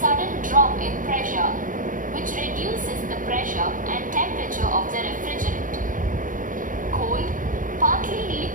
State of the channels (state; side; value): late; left; 0.39 ms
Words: drop in pressure, which reduces the pressure and temperature of the refrigerant. Cold, partly